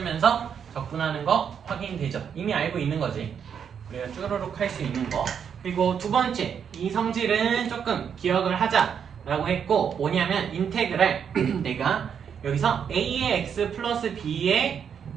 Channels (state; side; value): quieter; left; 7.6 dB